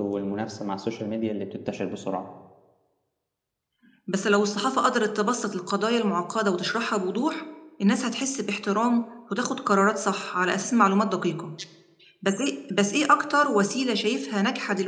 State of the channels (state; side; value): identical; both; correlation 1.00